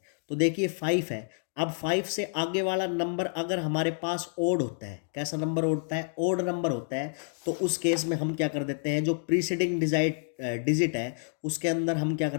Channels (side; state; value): right; silent; digital silence